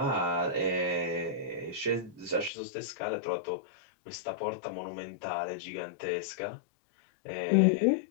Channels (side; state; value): right; drops out; at 2.5 s